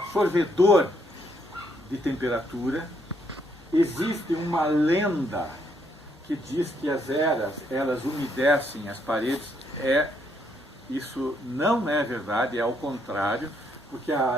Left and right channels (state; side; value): normal; both; correlation 0.73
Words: de temperatura. Existe uma lenda que diz que as eras, elas umedecem as paredes. Isso não é verdade, é ao contrário, porque a